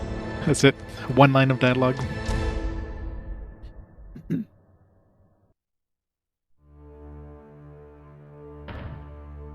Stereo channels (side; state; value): both; identical; correlation 1.00